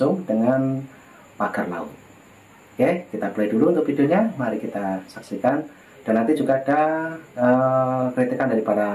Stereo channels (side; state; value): both; identical; correlation 1.00